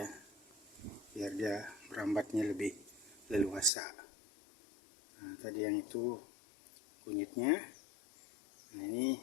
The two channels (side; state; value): right; drops out; at 3.7 s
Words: biar dia merambatnya lebih leluasa. Nah, tadi yang itu kunyitnya. Nah, ini